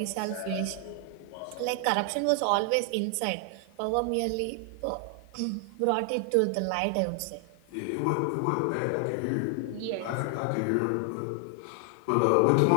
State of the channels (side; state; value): both; different; correlation 0.00